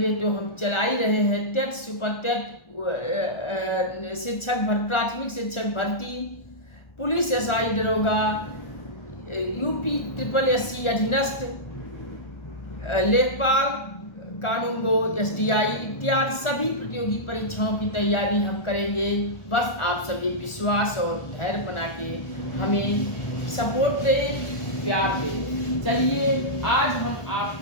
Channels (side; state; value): right; late; 1.4 ms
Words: तो हम चला ही रहे हैं, टेट सुपर टेट, प्राथमिक शिक्षक भर्ती, पुलिस SI दरोगा, UP SSSC अधीनस्थ, लेखपाल, कानूनगो, SDI इत्यादि सभी प्रतियोगी परीक्षाओं की तैयारी हम करेंगे। बस आप सभी विश्वास और धैर्य बना के हमें सपोर्ट दें, प्यार दें। चलिए आज हम